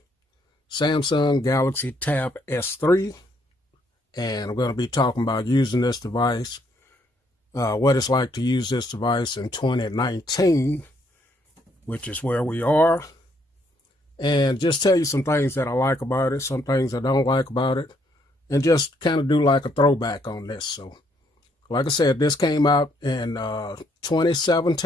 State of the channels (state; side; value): normal; both; correlation 0.70